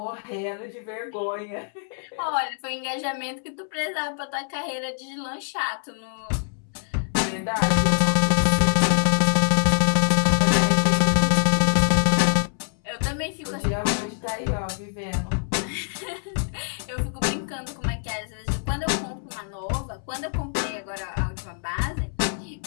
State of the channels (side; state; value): right; silent; 62 dB below the other